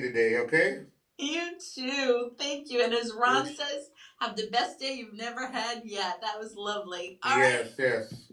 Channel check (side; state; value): both; identical; correlation 1.00